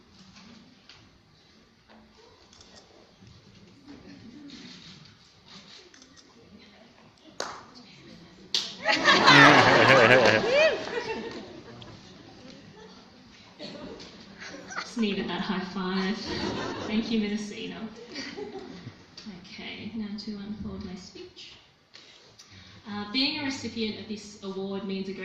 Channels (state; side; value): identical; both; correlation 1.00